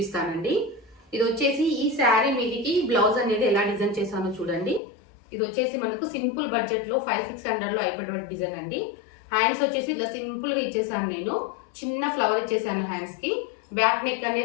ఇది వచ్చేసి ఈ శారీ మీదికి బ్లౌజ్ అనేది ఎలా డిజైన్ చేశానో చూడండి. ఇది వచ్చేసి మనకు సింపుల్ బడ్జెట్లో 500-600లో అయిపోయేటువంటి డిజైన్ అండి. హ్యాండ్స్ వచ్చేసి ఇలా సింపుల్గా ఇచ్చేసాను, నేను చిన్న ఫ్లవర్ ఇచ్చేసాను హ్యాండ్స్కి. బ్యాక్ నెక్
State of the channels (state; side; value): drops out; right; at 4.8 s